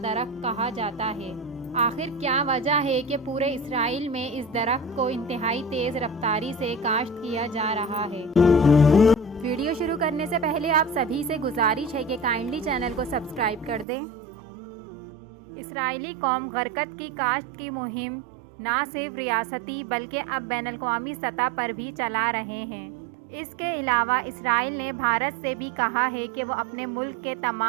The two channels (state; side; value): drops out; left; at 13.9 s